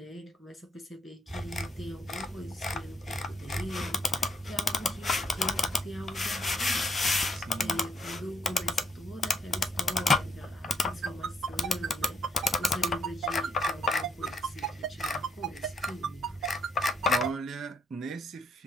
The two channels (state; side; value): normal; both; correlation 0.72